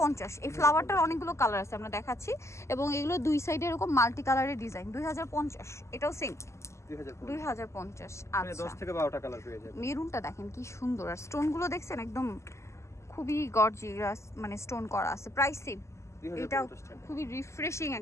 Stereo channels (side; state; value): right; late; 0.13 ms